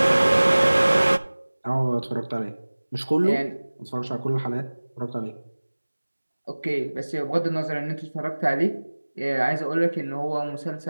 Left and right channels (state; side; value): inverted; both; correlation -1.00